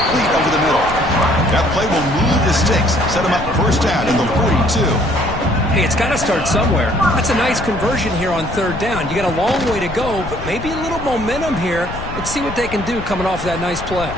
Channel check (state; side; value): noise; left; rumble, 10 dB below the sound